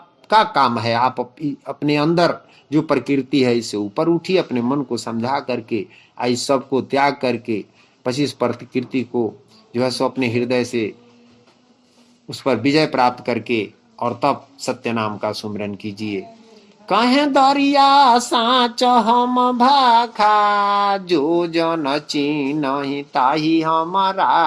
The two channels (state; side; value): identical; both; correlation 1.00